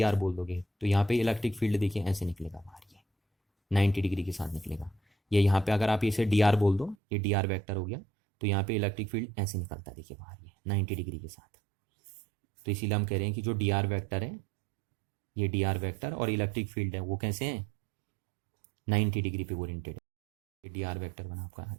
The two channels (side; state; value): left; drops out; at 7.0 s